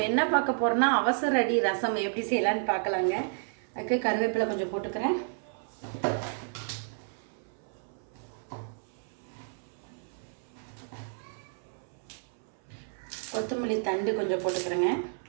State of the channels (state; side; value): silent; left; 57 dB below the other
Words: என்ன பார்க்க போகிறோன்னா அவசர அடி ரசம் எப்படி செய்யலான்னு பார்க்கலாங்க. அதுக்கு கருவேப்பிலை கொஞ்சம் போட்டுக்கிறேன். கொத்தமல்லி தண்டு கொஞ்சம் போட்டுக்கிறேங்க.